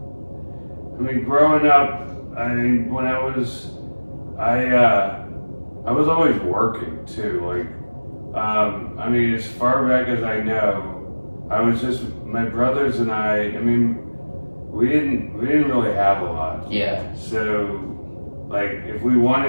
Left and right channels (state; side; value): inverted; both; correlation -1.00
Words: growing up, when I was always working too. As far back as I know, I was just, my brothers and I we didn't really have a lot. Yeah. So, if we